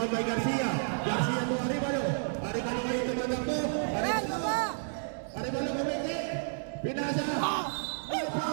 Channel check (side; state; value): left; silent; digital silence